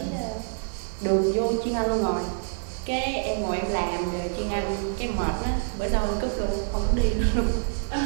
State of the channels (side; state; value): left; silent; digital silence